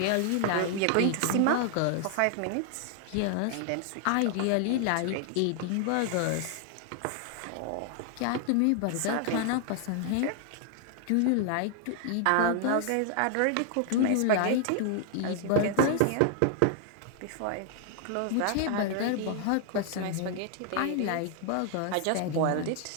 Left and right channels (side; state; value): both; different; correlation 0.00